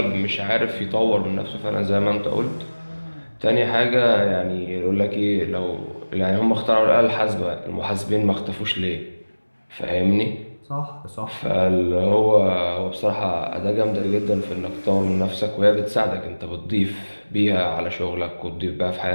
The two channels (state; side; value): inverted; both; correlation -1.00